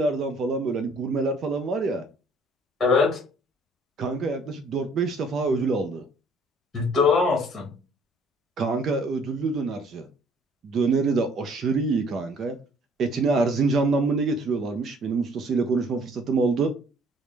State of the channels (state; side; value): normal; both; correlation 0.58